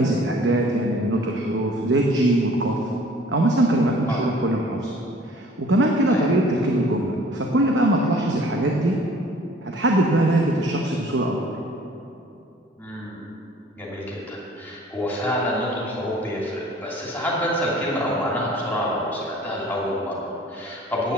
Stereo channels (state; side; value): normal; both; correlation 0.52